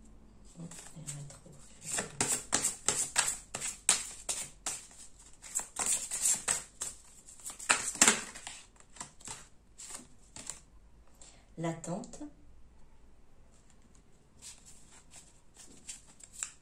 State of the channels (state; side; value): identical; both; correlation 1.00